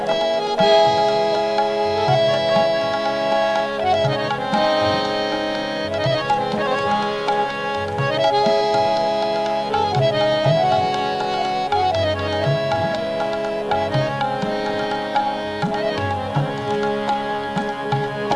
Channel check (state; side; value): identical; both; correlation 1.00